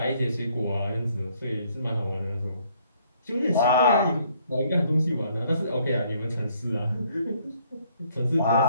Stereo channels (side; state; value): both; inverted; correlation -0.65